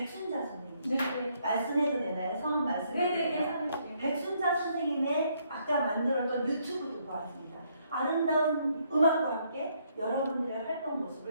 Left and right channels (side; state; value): both; inverted; correlation -0.71